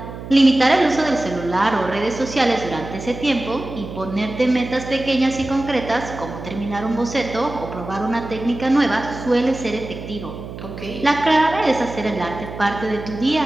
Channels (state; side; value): noise; right; hum, 11 dB below the sound